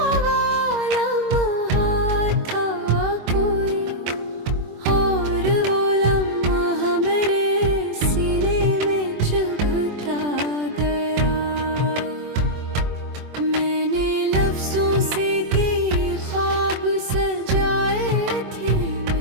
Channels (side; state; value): left; late; 24 ms